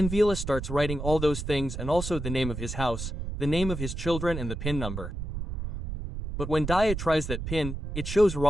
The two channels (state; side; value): noise; right; rumble, 6 dB below the sound